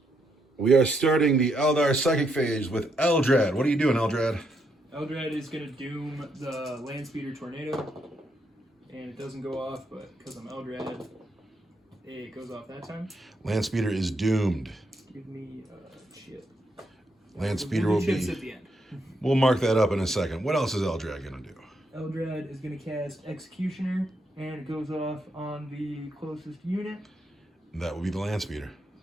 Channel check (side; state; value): both; normal; correlation 0.78